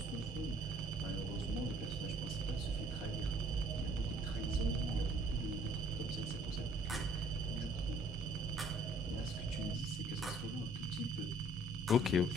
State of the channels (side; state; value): both; normal; correlation 0.58